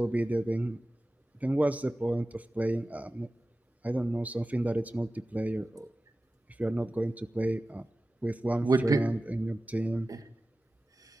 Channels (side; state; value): both; normal; correlation 0.96